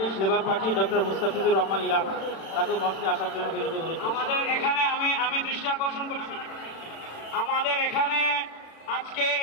labour party doctor Mustafizur Rahman Iran, তাকে মঞ্চে আসার জন্য বিনীত অনুরোধ করছি। আমাদের এখানে আমি দৃষ্টি আকর্ষণ করছি, আমাদের এখানে আজকে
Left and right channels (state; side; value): late; right; 36 ms